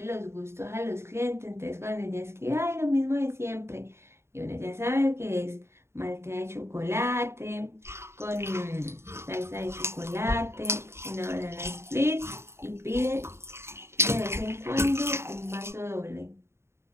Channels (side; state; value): left; late; 0.13 ms